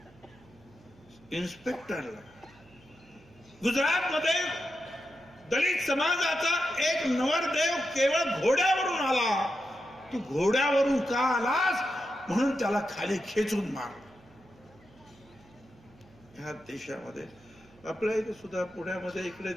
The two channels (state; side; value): noise; right; hum, 27 dB below the sound